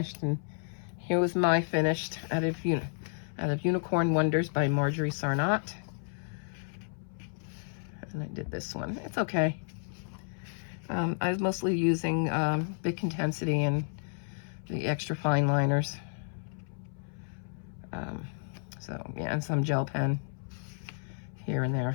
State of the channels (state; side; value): silent; right; 57 dB below the other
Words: and here was my finished out of Unicorn Wonders by Marjorie Sarnott. And I did this one. It's okay. I was mostly using Big Intensity and the extra fine liners. So yeah, and some gel pen here and